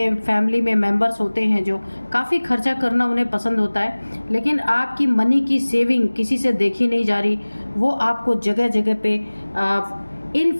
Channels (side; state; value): both; inverted; correlation -1.00